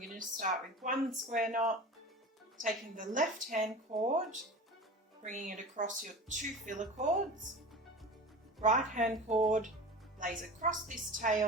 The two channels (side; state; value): both; normal; correlation 0.34